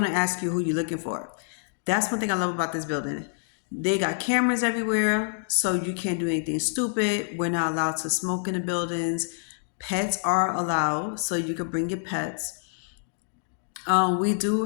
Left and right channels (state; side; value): silent; right; digital silence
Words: ask you who you're looking for. That's one thing I love about this building. They got cameras everywhere, so you can't do anything stupid. We're not allowed to smoke in the buildings. Pets are allowed, so you can bring your pets. We do